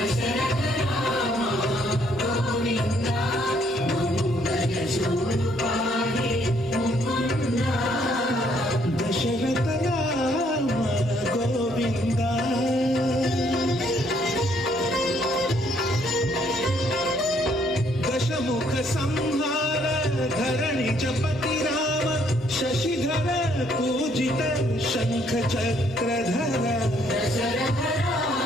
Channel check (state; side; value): normal; both; correlation 0.68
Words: राम गोविंद महोदय जूडुपाई मुकुंद दशरथ राम गोविंद दशमुख संहार धरणि जपति राम शशिधर पूजित शंख चक्रधर दशरथ